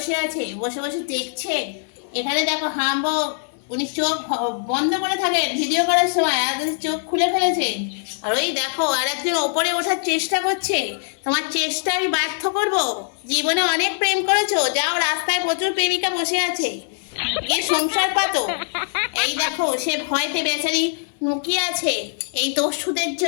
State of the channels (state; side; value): silent; right; digital silence